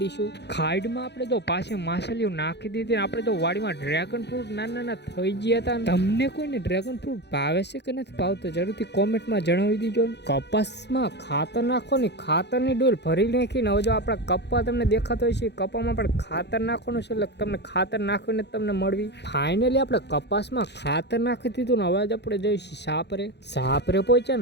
દઈશું. ખાઈડમાં આપણે જો પાછી માછલીઓ નાખી દીધી ને આપણે જો વાડીમાં ડ્રેગન ફ્રૂટ નાના થઈ ગયા હતા. તમને કોઈને ડ્રેગન ફ્રૂટ ભાવે છે કે નથી ભાવતો જરૂરથી કોમેન્ટમાં જણાવી દીજો. કપાસમાં ખાતર નાખો ને ખાતરની ડોલ ભરી નાખીને હવે જો આપણા કપ્પા તમને દેખાતો હોય છે કપ્પામાં પણ ખાતર નાખવાનું છે એટલે તમને ખાતર નાખીને તમને મળવી. ફાઇનલી આપણે કપાસમાં ખાતર નાખી દીધું ને હવે આપણે જઈશું સાપરે પહોંચ્યા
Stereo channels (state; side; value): late; right; 0.50 ms